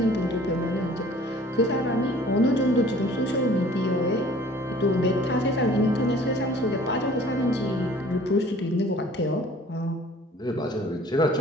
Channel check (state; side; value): normal; both; correlation 0.51